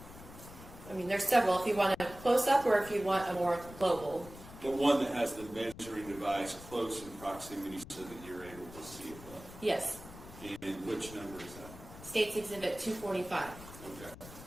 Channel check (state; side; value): noise; left; rumble, 16 dB below the sound